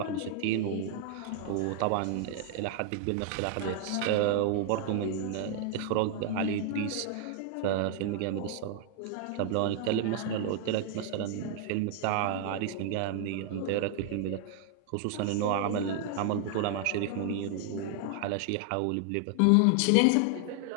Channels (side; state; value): both; different; correlation 0.00